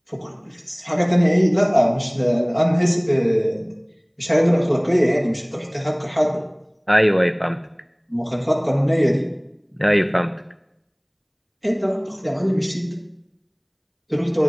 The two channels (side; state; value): both; identical; correlation 1.00